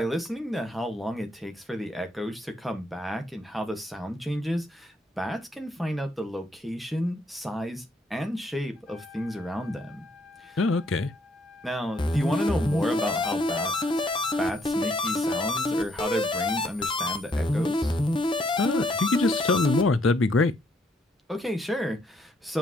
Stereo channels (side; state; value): both; normal; correlation 0.70